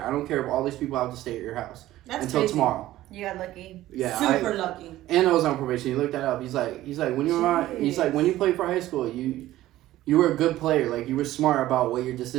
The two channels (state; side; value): quieter; left; 15.1 dB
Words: I don't care if all these people have to stay at your house until tomorrow." You got lucky. Yeah, super lucky. And I was on probation. He looked that up. He's like when you were when you played for high school, you were a good player. Like, you were smart about what your